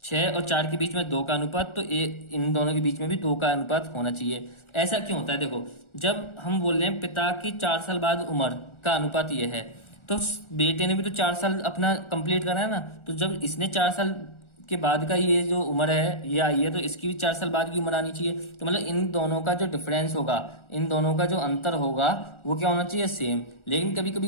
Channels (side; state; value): right; late; 1.4 ms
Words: 6 और 4 के बीच में 2 का अनुपात, तो इन दोनों के बीच में भी 2 का अनुपात होना चाहिए। ऐसा क्यों होता है, देखो जब हम बोल रहे हैं पिता की 4 साल बाद उम्र का अनुपात ये है, तो बेटे ने भी तो 4 साल अपना कंप्लीट करा है ना, तो जब इसने 4 साल के बाद का ये जो उम्र है ये आई है, तो इसकी भी 4 साल बाद की उम्र आनी चाहिए। तो मतलब इन दोनों का जो डिफरेंस होगा, इन दोनों का जो अंतर होगा वो क्या होना चाहिए, सेम। लेकिन कभी कभी